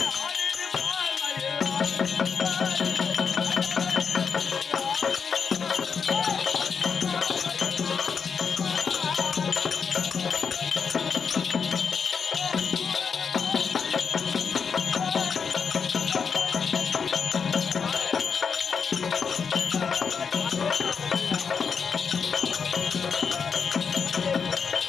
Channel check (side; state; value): right; quieter; 6.1 dB